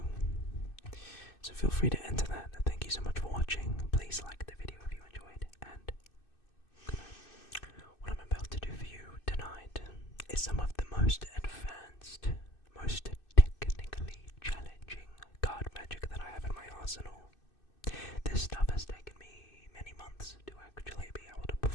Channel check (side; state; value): right; late; 2.6 ms